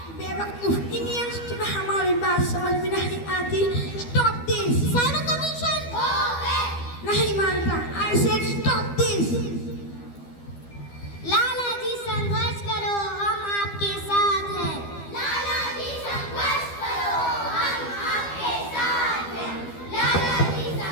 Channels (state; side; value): late; right; 12 ms